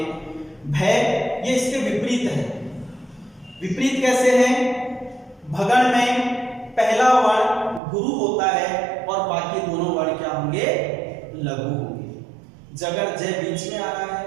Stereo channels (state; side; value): drops out; left; at 7.8 s